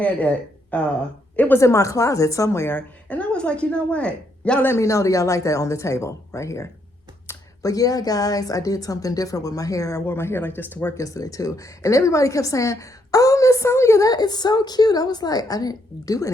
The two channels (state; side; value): normal; both; correlation 0.74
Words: it. It was in my closet somewhere. And I was like, you know what? Y'all let me know that y'all like that on the table right here. But yeah, guys, I did something different with my hair. I wore my hair like this to work yesterday too. And everybody kept saying, oh, Miss Sonia, that is so cute. I was like, I didn't do